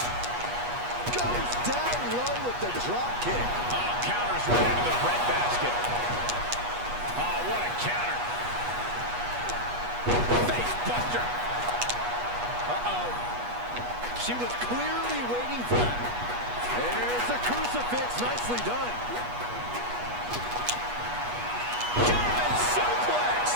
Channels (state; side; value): late; left; 8.3 ms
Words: Goes down low with the drop kick. Counters right into the breadbasket. Oh, what a counter. Face buster. Uh-oh. She was clearly waiting for that. There's a crucifix. Nicely done. German suplex.